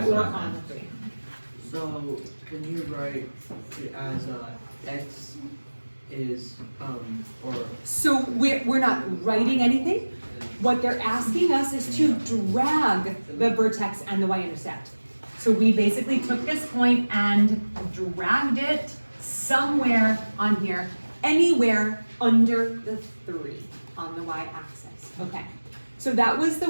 or what I on meant. the 3. So, can you write it as, x is, or, So we're not writing anything. What they're asking us is to drag the vertex and the y-intercept. So we basically took this point and dragged it somewhere on here, anywhere under the 3 on the y-axis. Okay, so that was the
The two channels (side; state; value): both; inverted; correlation -1.00